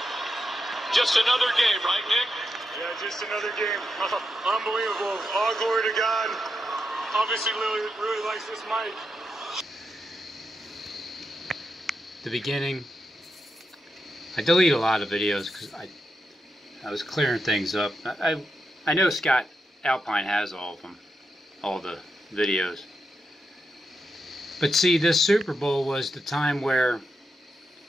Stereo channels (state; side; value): normal; both; correlation 0.85